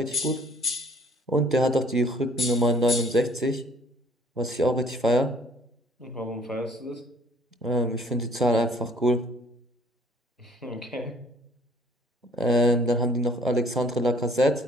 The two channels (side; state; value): both; normal; correlation 0.57